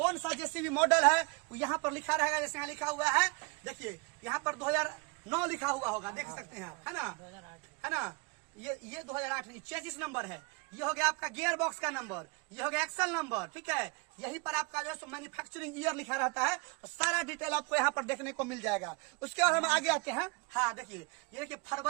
सा जेसीबी मॉडल है वो यहाँ पर लिखा रहेगा। जैसे यहाँ लिखा हुआ है, देखिए यहाँ पर 2009 लिखा हुआ होगा, देख सकते हैं आप, है ना, है ना। ये 2008 चेसिस नंबर है। ये हो गया आपका गियर बॉक्स का नंबर, ये हो गया एक्सल नंबर, ठीक है। यहीं पर आपका जो है मैन्युफैक्चरिंग ईयर लिखा रहता है और सारा डिटेल आपको यहाँ पर देखने को मिल जाएगा। उसके बाद हम आगे आते हैं। हाँ देखिए, ये देखिए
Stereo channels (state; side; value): quieter; left; 30.5 dB